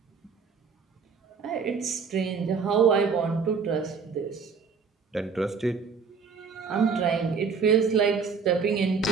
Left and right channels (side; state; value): left; quieter; 5.6 dB